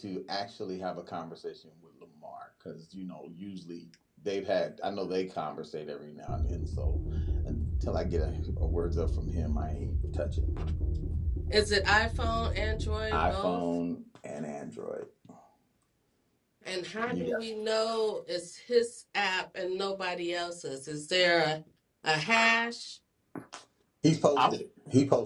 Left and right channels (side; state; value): both; identical; correlation 1.00